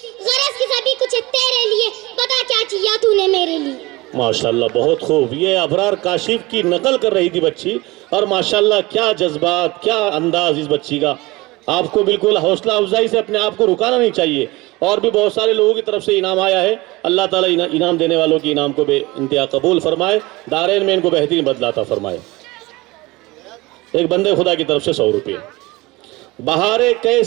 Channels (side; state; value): left; quieter; 21.7 dB